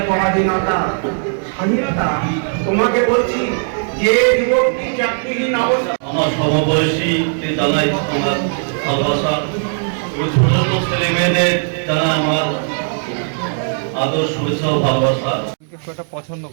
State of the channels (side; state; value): left; silent; digital silence